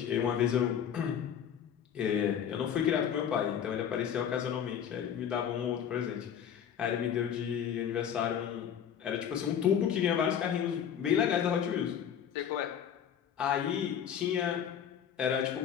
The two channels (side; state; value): right; quieter; 8.7 dB